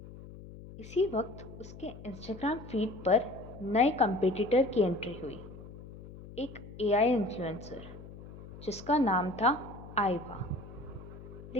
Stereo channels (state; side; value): noise; left; hum, 15 dB below the sound